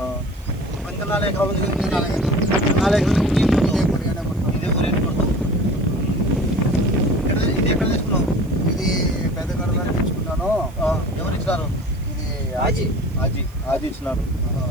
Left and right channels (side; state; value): right; noise; hiss, 27 dB below the sound